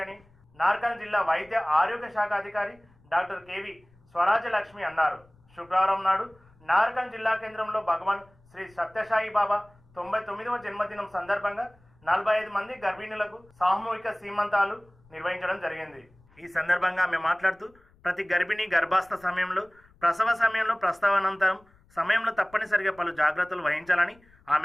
అని నార్కల్ జిల్లా వైద్య ఆరోగ్య శాఖ అధికారి డాక్టర్ కేవి స్వరాజ్యలక్ష్మి అన్నారు. శుక్రవారం నాడు నార్కల్ జిల్లా కేంద్రంలో భగవాన్ శ్రీ సత్యసాయి బాబా 99వ జన్మదినం సందర్భంగా 45 మంది గర్భిణులకు సామూహిక సీమంతాలు నిర్వహించడం జరిగింది. ఈ సందర్భంగా ఆమె మాట్లాడుతూ ప్రతి గర్భిణి గర్భాస్థ సమయంలో, ప్రసవ సమయంలో, ప్రసవానంతరం సమయంలో తప్పనిసరిగా పలు జాగ్రత్తలు వహించాలని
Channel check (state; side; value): noise; left; rumble, 30 dB below the sound